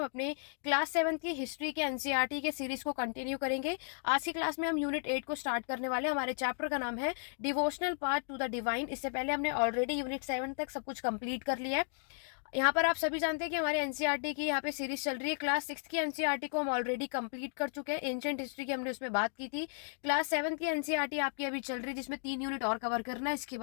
अपने क्लास 7 की हिस्ट्री के एनसीईआरटी के सीरीज को कंटिन्यू करेंगे। आज की क्लास में हम यूनिट 8 को स्टार्ट करने वाले हैं। हमारे चैप्टर का नाम है devotional part two the divine. इससे पहले हमने ऑलरेडी यूनिट 7 तक सब कुछ कंप्लीट कर लिया है। यहाँ पर आप सभी जानते हैं कि हमारे एनसीईआरटी की यहाँ पे सीरीज चल रही है। क्लास 6 की एनसीईआरटी को हम ऑलरेडी कंप्लीट कर चुके हैं। एंशिएंट हिस्ट्री की हमने उसमें बात की थी। क्लास 7 की एनसीईआरटी आपकी अभी चल रही है, जिसमें 3 यूनिट और कवर करना है। इसके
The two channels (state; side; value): silent; right; 55 dB below the other